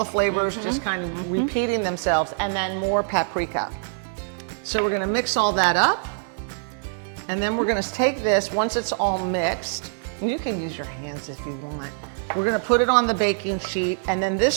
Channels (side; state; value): left; silent; digital silence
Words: flavors just kind of repeating themselves, and then more paprika. So we're gonna mix all that up, and then we're gonna take this, once it's all mixed, and you can use your hands if you want, we're gonna put it on the baking sheet, and then